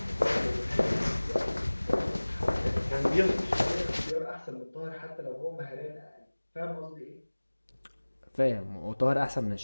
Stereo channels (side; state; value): both; inverted; correlation -1.00